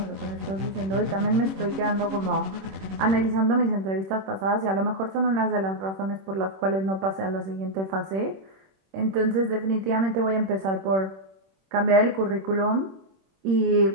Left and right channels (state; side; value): late; left; 26 ms